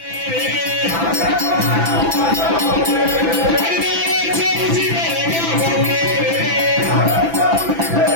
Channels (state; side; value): late; left; 6.0 ms